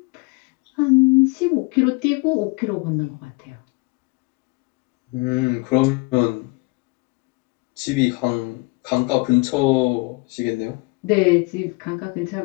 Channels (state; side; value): quieter; right; 28.5 dB